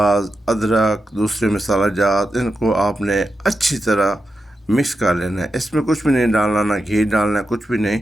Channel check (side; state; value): both; normal; correlation 0.88